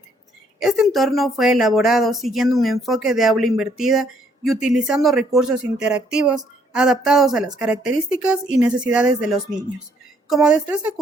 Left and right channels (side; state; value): both; normal; correlation 0.67